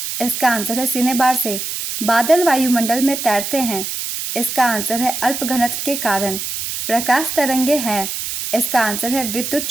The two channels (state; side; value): noise; right; hiss, 5 dB below the sound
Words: इसका आंसर है सिनेबार से। बादल वायुमंडल में तैरते हैं। इसका आंसर है अल्प घनत्व के कारण। प्रकाश तरंगे हैं। इसका आंसर है विद्युत